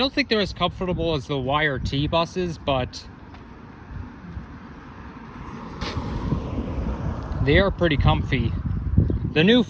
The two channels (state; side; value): identical; both; correlation 1.00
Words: think they're as comfortable as the YRT buses, but they are pretty comfy. The new